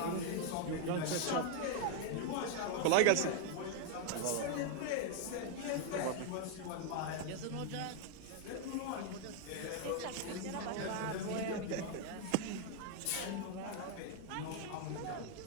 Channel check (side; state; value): both; different; correlation 0.00